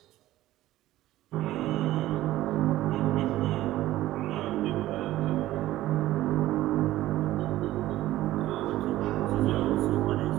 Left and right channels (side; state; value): left; quieter; 15.3 dB